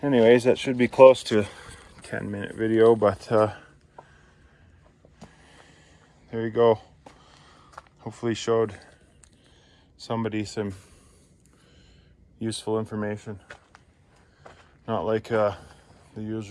Anyways, that should be close to a 10-minute video, but there you go. Hopefully showed somebody some useful information. Not like the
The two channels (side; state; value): both; identical; correlation 1.00